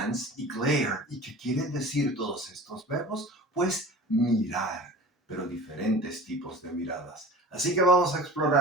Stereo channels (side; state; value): both; normal; correlation 0.38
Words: y glare. ¿Y qué quieren decir todos estos verbos? Pues mirar, pero diferentes tipos de miradas. Así que vamos a